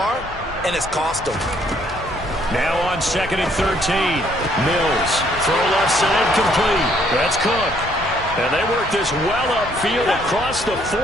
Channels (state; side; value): normal; both; correlation 0.66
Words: and it's cost them. Now on 2nd and 13. Mills. Throw left side complete. That's Cook. And they work this well upfield across the